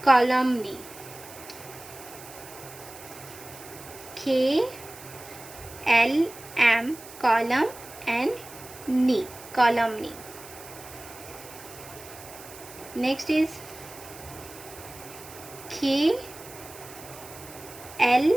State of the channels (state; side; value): noise; right; hiss, 17 dB below the sound